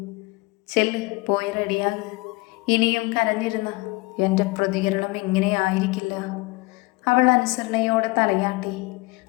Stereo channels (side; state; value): right; quieter; 24.5 dB